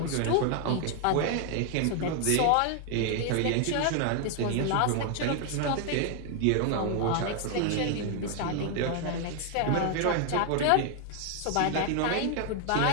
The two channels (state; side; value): different; both; correlation 0.00